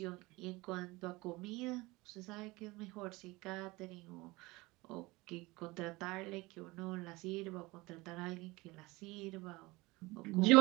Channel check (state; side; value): quieter; left; 22.3 dB